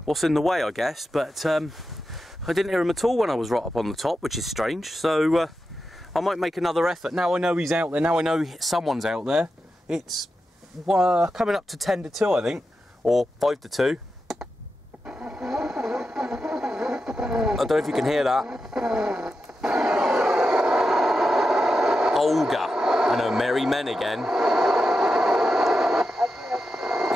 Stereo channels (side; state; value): both; normal; correlation 0.89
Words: what's in the way, I guess, but I didn't hear him at all when I was right up on the top, which is strange. So I might make another effort. Now I know he's out there, now I know someone's out there. It's coming up to 10 to 2, I think, or 5 to 2. I don't know if you can hear that. Olga and her merry men again.